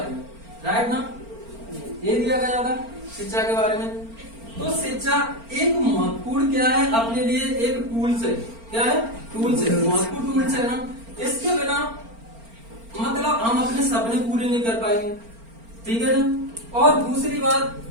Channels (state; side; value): late; left; 4.4 ms